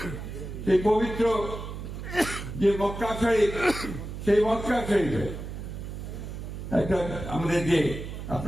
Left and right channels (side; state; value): right; noise; hum, 8 dB below the sound